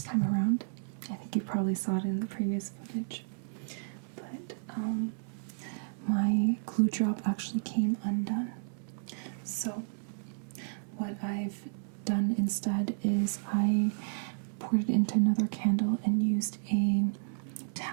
time around I think you probably saw it in the previous footage. But my glue drop actually came undone. So what I've done instead is I poured it into another candle and used a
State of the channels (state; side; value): silent; left; 56 dB below the other